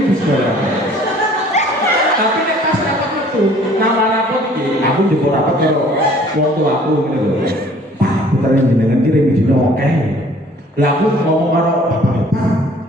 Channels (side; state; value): both; normal; correlation 0.54